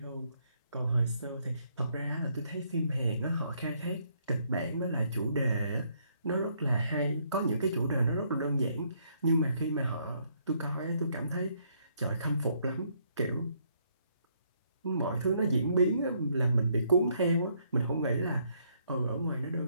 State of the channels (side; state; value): both; inverted; correlation -0.70